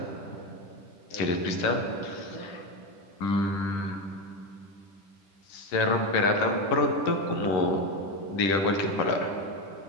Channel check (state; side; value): late; right; 10 ms